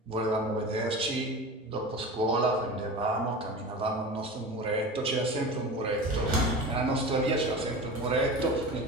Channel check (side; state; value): both; normal; correlation 0.31